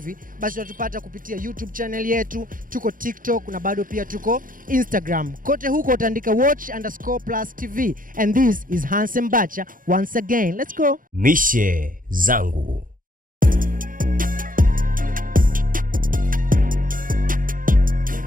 basi utatupata kupitia YouTube channel yetu, tuko TikTok na bado pia tuko Instagram. Kote huko utaandika watch_plus TV and this is Handsome Bacha once again. Let's go. Mishe zangu.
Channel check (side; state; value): left; late; 0.40 ms